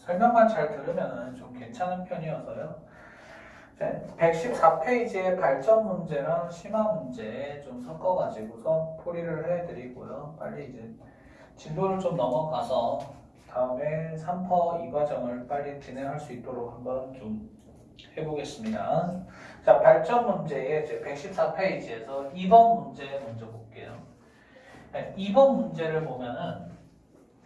잘 들으면은 좀 괜찮은 편이어서요. 114페이지의 발전 문제랑 심화 문제 좀 섞어가지고서 풀이를 해드리고요. 빨리 이제 진도를 좀 넘어가서 다음에 3퍼 2과정을 빨리 진행할 수 있도록 한번 좀 해보겠습니다. 자, 발전 문제의 이제 114페이지에서 2번 문제 먼저 볼게요. 2번 문제를 보면은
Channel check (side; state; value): both; identical; correlation 1.00